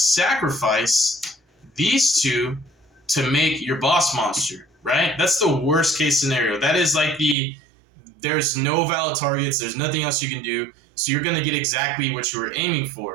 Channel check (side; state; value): left; drops out; at 7.4 s